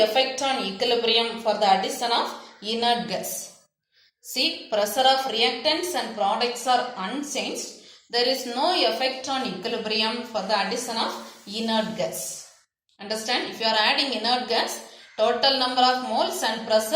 equilibrium for the addition of inert gas. See, pressure of reactants and products are unchanged. There is no effect on equilibrium for the addition of inert gas. Understand? If you are adding inert gas, total number of moles and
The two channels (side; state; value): both; identical; correlation 1.00